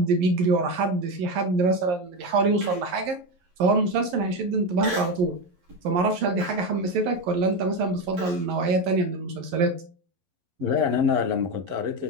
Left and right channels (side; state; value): left; late; 11 ms